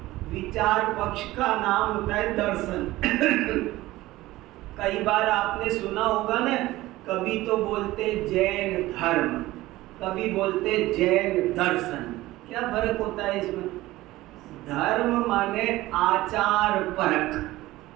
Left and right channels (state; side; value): quieter; left; 17.5 dB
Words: विचार पक्ष का नाम होता है दर्शन। कई बार आपने सुना होगा ना, कभी तो बोलते जैन धर्म, कभी बोलते जैन दर्शन। क्या फर्क होता है इसमें? धर्म माने आचार परक,